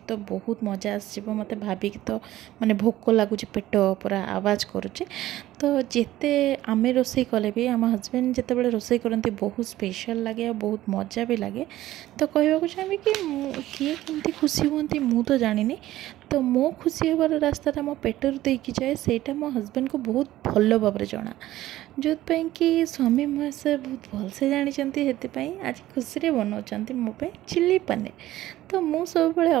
तो बहुत मजा आसो मत भाविक तो माने भोक लगुच पेट पूरा आवाज करुचे तो जिते आमे रोसई कले भी आम हजबैंड जिते बड़े रोसई करती बहुत स्पेशल लगे और बहुत मजा भी लगे तो कहवाक चाहिए कि किए केमती खुशी हमें मु तो जानी तो मो खुशी होबार रास्ता मो पेटर देकी जाए सेटा मो हजबैंड को बहुत भल भाव जना जो कि स्वामी महाशय बहुत भलसे जानते आज खुशी बनाऊँ मो चिली पनीर तो मु सब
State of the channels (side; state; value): left; quieter; 15.0 dB